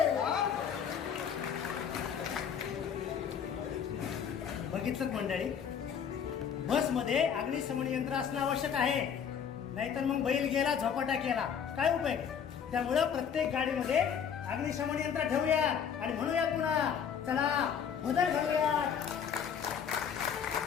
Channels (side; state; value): right; quieter; 7.7 dB